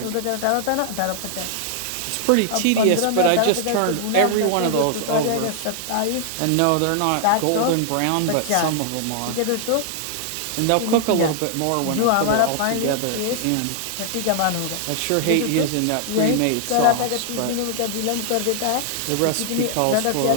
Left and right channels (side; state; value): both; different; correlation 0.00